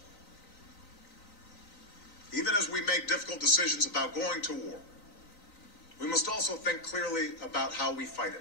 Even as we make difficult decisions about going to war, we must also think clearly about how we fight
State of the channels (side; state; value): right; late; 3.9 ms